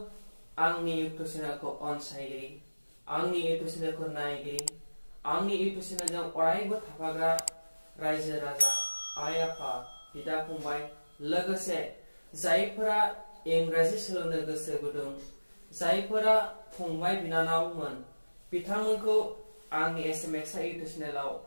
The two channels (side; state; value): both; inverted; correlation -1.00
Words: आंनि इउट्यूब चेनेलखौ अनसायगिरि आंनि इउट्यूब चेनेलखौ नायगिरि आंनि इउट्यूब चेनेलजों अरायबो थाफाग्रा रायजो राजा आइ आफा बिदा फंबाय लोगोसे जायफोरा इंराजि सोलोंनो गोसो गुदुं जायफोरा फंबाय बिनानावमोन बिथांमोनखौ आंनि एसएमएक्स इउट्यूब चेनेलाव